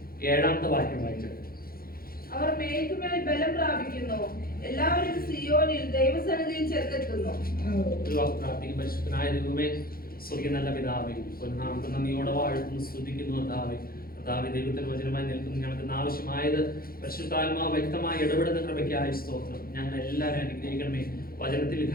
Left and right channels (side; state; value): right; late; 0.43 ms